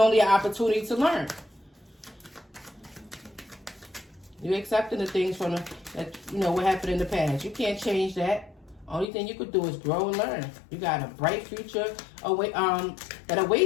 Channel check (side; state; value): right; drops out; at 9.1 s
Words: an opportunity to learn. You're accepting the things from what happened in the past. You can't change that. Only thing you could do is grow and learn. You got a bright future that